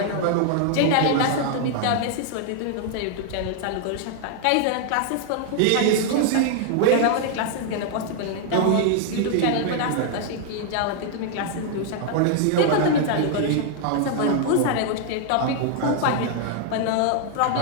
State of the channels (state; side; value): different; both; correlation 0.00